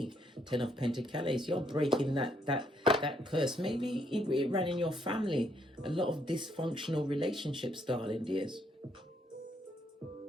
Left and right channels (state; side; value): normal; both; correlation 0.73